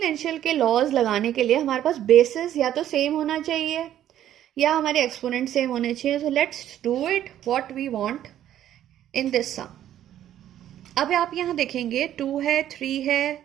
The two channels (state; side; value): quieter; left; 11.6 dB